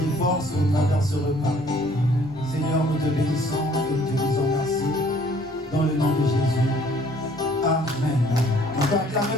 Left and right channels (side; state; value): both; normal; correlation 0.58